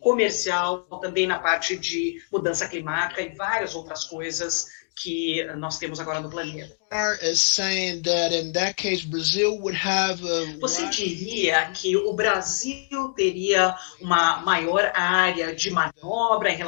comercial, também na parte de mudança climática e várias outras coisas que nós temos agora no planeta. Você diria que o Brasil teria uma maior área de manobra em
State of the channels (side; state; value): right; silent; digital silence